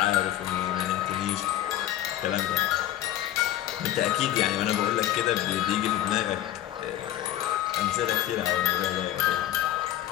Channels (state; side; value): quieter; right; 12.9 dB